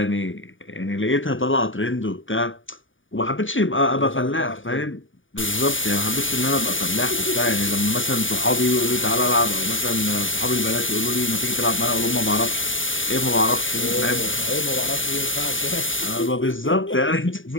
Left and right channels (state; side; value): late; right; 0.57 ms